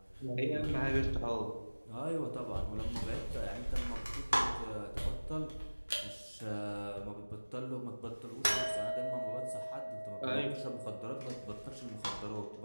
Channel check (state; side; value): inverted; both; correlation -1.00